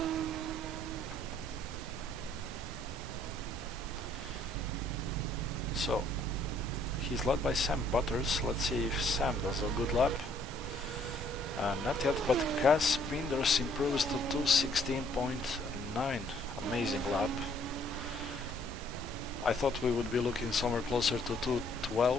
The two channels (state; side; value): normal; both; correlation 0.64